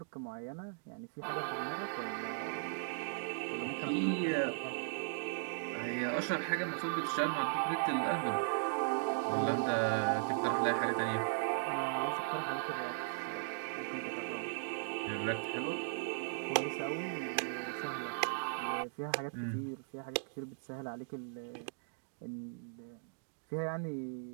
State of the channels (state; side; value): silent; left; digital silence